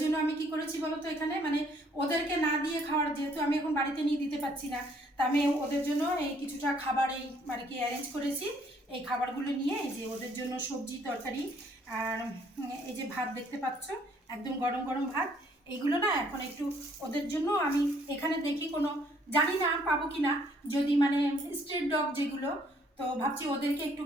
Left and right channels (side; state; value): both; normal; correlation 0.64